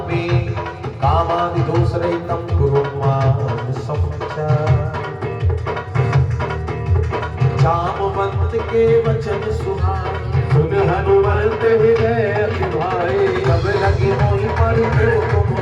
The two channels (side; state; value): both; identical; correlation 1.00